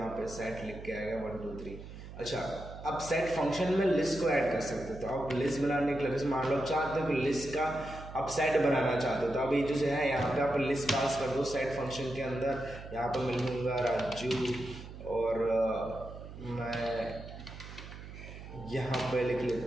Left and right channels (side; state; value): right; noise; hum, 13 dB below the sound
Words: पे सेट लिख के आएगा 1 2 3। अच्छा, अब सेट फंक्शन में लिस्ट को ऐड कर सकते हो, तो आप लिस्ट बनाने के लिए मान लो आप चाहते हो कि लिस्ट का आप सेट बनाना चाहते हो, तो अब ये जो है यहाँ पे आप लिस्ट पास कर दो सेट फंक्शन के अंदर। यहाँ पर मिल लूँगा राजू और मैं यहाँ पे लिख